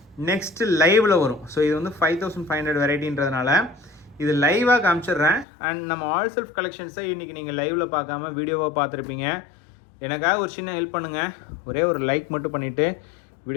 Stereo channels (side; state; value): right; drops out; at 5.5 s